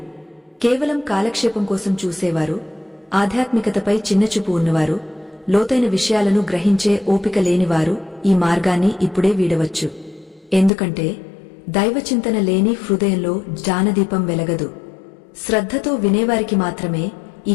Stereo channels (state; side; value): drops out; right; at 10.7 s